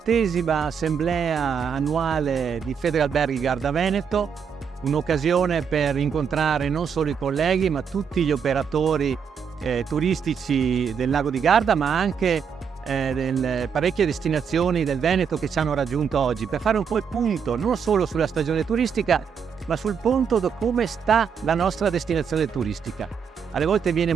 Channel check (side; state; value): left; quieter; 6.9 dB